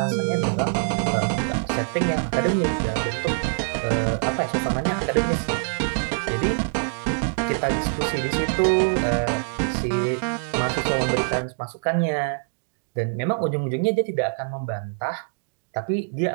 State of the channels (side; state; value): left; silent; digital silence